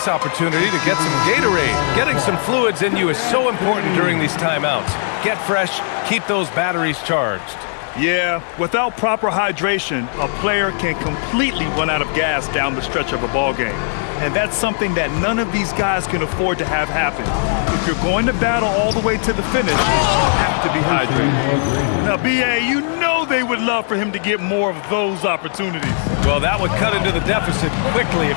opportunity to get some Gatorade. Getting some fluids in you is so important during these timeouts. Get fresh, keep those batteries charged. Yeah, without proper hydration, a player can completely run out of gas down the stretch of a ball game. And that's something that none of these guys can afford to have happen. If you're going to battle all the way to the finish, you have to be hydrated. Now, B.A., you know they would love for him to get more of those opportunities. Well, that would cut into the deficit quickly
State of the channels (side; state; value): right; silent; digital silence